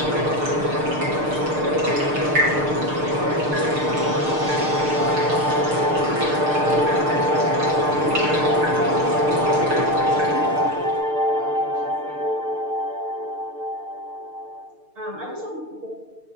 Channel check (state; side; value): late; left; 6.6 ms